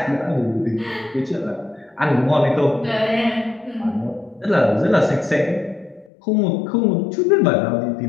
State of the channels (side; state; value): right; drops out; at 6.1 s